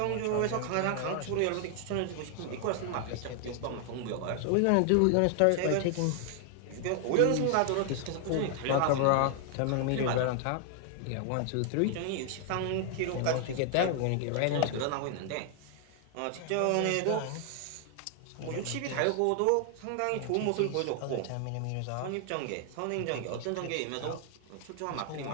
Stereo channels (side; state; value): both; different; correlation 0.00